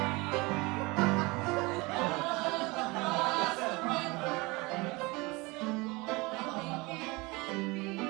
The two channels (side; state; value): left; quieter; 24.7 dB